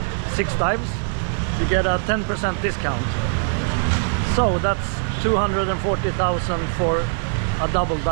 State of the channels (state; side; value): silent; left; 64 dB below the other